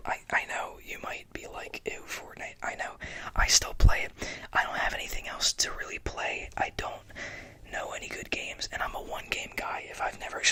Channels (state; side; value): identical; both; correlation 1.00